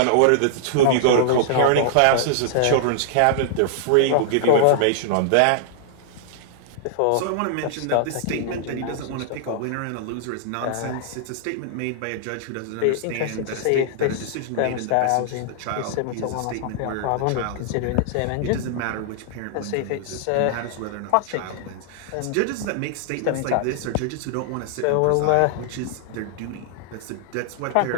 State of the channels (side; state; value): both; different; correlation -0.01